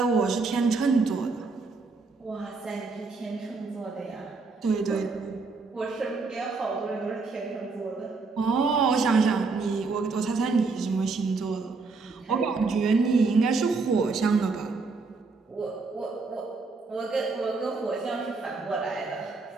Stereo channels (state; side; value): quieter; left; 4.2 dB